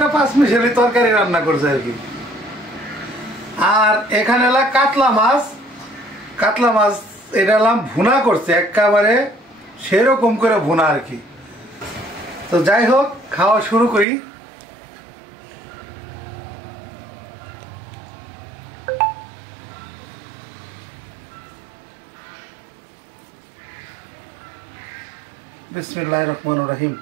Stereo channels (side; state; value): left; drops out; at 14.1 s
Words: পাঁচ মিশালি তরকারি রান্না করছে আর কি। আর এখানে এলাম কাতলা মাছ, কাতলা মাছ এটা এলাম ভুনা করছে একেবারে সেরকম করে ভুনা আর কি। তো যাই হোক, খাওয়া শুরু করি। বিসমিল্লাহির রহমানির রহিম।